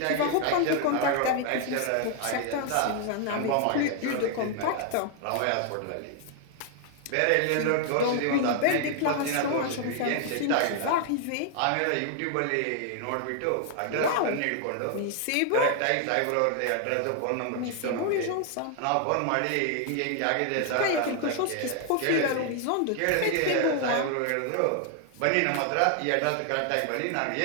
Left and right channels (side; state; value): both; different; correlation 0.00